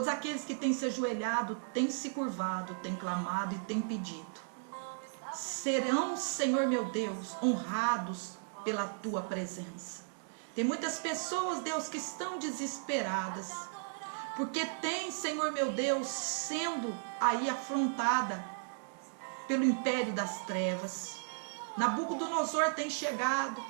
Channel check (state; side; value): silent; left; digital silence